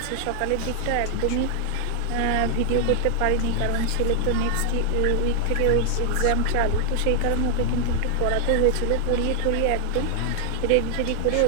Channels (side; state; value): both; different; correlation 0.00